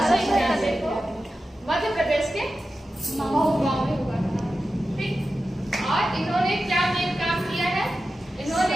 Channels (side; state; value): both; normal; correlation 0.92